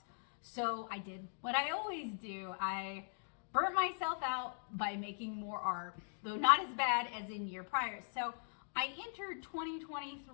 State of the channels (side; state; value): right; silent; digital silence